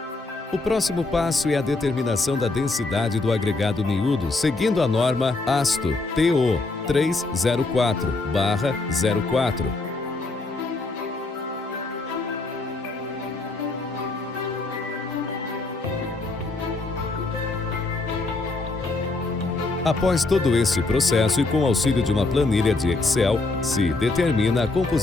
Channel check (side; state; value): right; quieter; 3.4 dB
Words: O próximo passo é a determinação da densidade do agregado miúdo, seguindo a norma ASTO TO 304/04. Após todo esse processo e com auxílio de uma planilha de Excel, se determina a